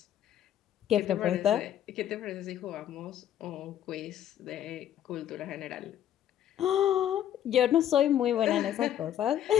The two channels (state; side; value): quieter; right; 11.0 dB